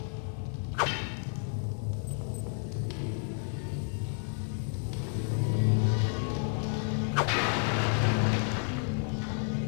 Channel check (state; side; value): silent; right; 57 dB below the other